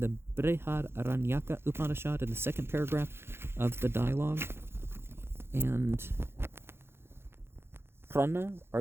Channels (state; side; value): late; left; 0.12 ms